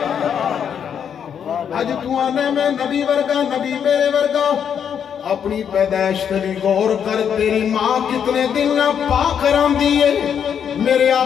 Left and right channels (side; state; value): right; quieter; 8.0 dB